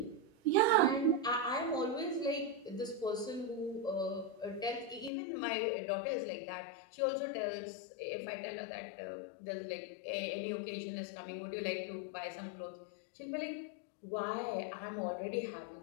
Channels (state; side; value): drops out; right; at 5.1 s